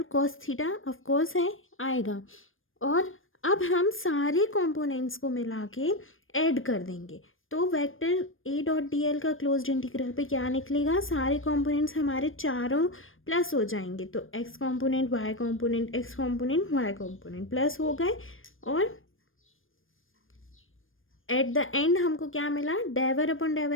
cos theta of course है आएगा, और अब हम सारे कंपोनेंट्स को मिला के ऐड कर देंगे, तो vector a dot D L का क्लोज्ड इंटीग्रल पे क्या निकलेगा, सारे कंपोनेंट्स हमारे चारों प्लस हो जाएंगे, तो x component y component x component y component plus हो गए, और एट द एंड हमको क्या मिला, डेवर upon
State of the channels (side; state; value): right; late; 0.59 ms